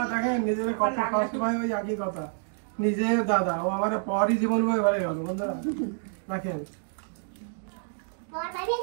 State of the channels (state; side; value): silent; left; digital silence